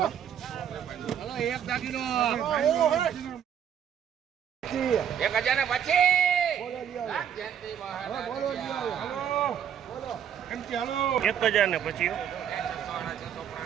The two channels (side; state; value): left; quieter; 9.0 dB